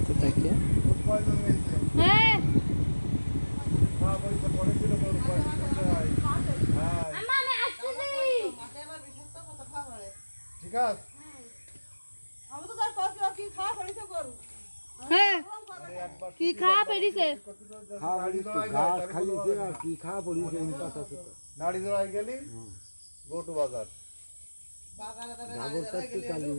থেকে। ঠিক আছে। কি খাওয়া পেরিছে ঘাস খাইছে আর কি খাওয়া পড়িছে নাড়ি জড়াই গেলি গো টু বাজার জাগরটা তো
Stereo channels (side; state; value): both; inverted; correlation -1.00